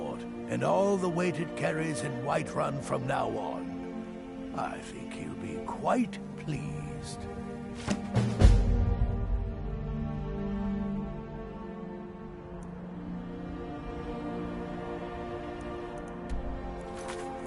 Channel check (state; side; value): identical; both; correlation 1.00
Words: and all the weight it carries in Whiterun from now on. I think he'll be quite pleased.